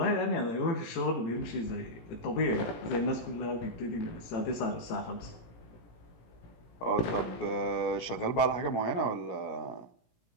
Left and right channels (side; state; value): right; late; 17 ms